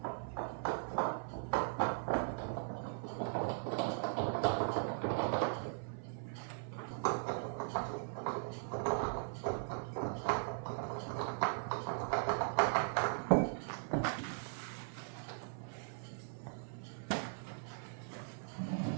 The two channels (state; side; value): silent; left; 52 dB below the other